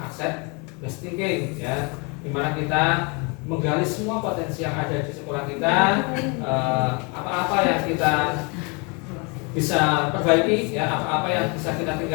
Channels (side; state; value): right; quieter; 32.0 dB